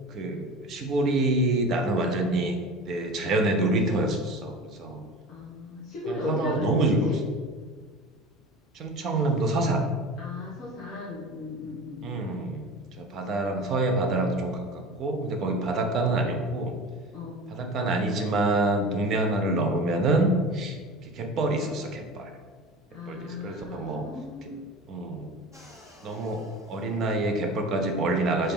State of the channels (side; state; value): both; normal; correlation 0.35